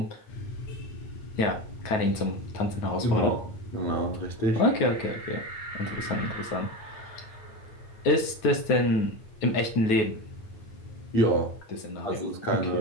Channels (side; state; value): right; late; 9.4 ms